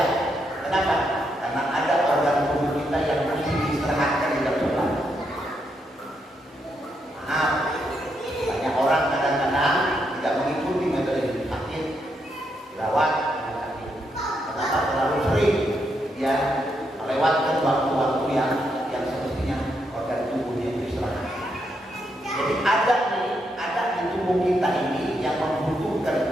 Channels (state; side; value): normal; both; correlation 0.79